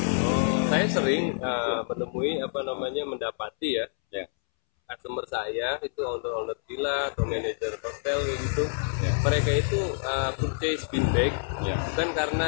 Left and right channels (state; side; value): silent; right; 60 dB below the other